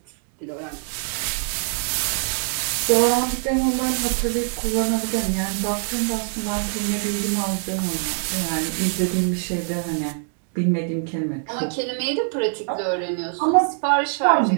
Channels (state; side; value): silent; left; 63 dB below the other